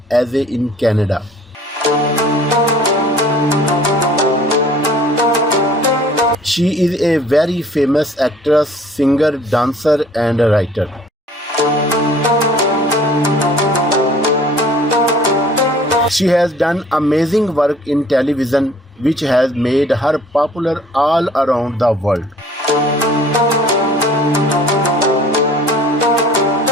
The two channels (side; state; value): both; normal; correlation 0.52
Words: as in Canada. She is a very famous actress, singer, dancer, and writer. She has done amazing work in television, which has made her popular all around the world.